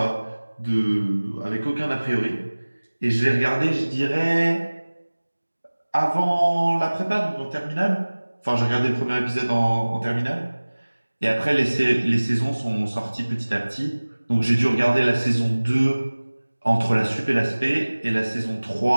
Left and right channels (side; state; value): both; inverted; correlation -1.00